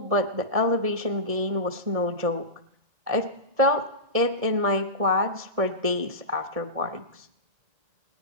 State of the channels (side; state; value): left; late; 1.7 ms